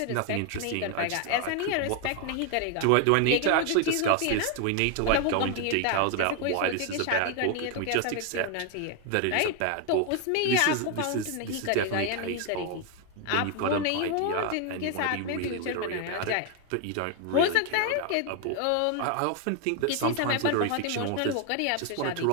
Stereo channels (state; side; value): different; both; correlation 0.01